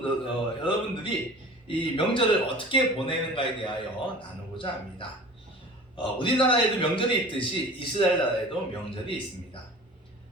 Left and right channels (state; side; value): normal; both; correlation 0.41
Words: 이 명절을 어떻게 보내는가에 대하여 나누고자 합니다. 우리나라에도 명절이 있듯이 이스라엘 나라에도 명절이 있습니다.